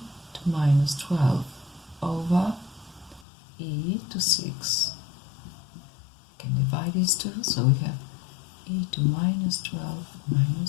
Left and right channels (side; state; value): right; drops out; at 3.2 s